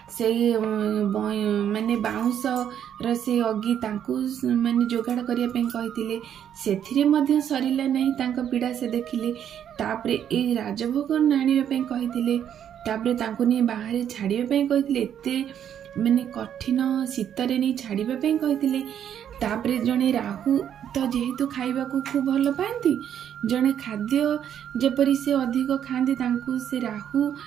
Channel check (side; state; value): left; quieter; 9.5 dB